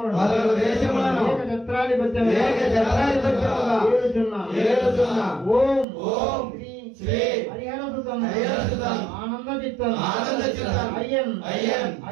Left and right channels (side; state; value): left; drops out; at 5.9 s